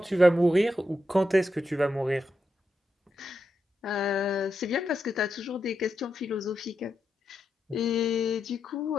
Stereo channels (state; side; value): normal; both; correlation 0.86